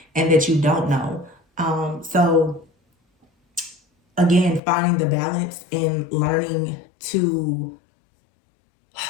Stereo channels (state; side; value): drops out; right; at 4.6 s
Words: and that you don't know. So again, finding the balance and learning to,